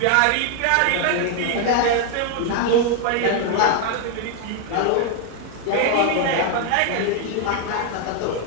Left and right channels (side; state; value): both; different; correlation 0.00